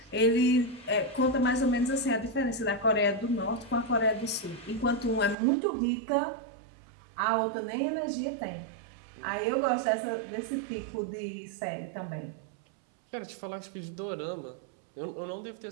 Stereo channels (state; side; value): drops out; left; at 5.4 s